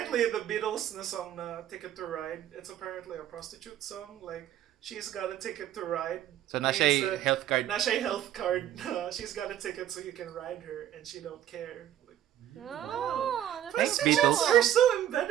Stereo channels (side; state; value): left; quieter; 11.6 dB